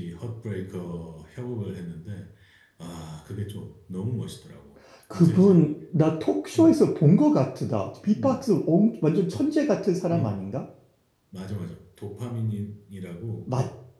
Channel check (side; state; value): both; identical; correlation 1.00